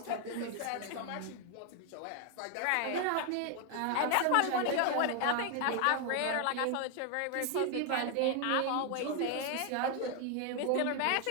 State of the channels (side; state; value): both; different; correlation 0.01